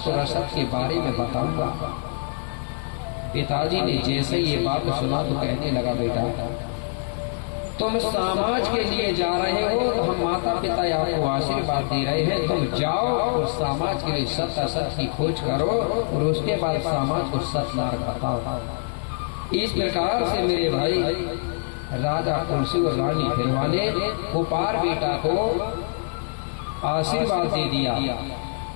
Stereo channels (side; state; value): right; silent; digital silence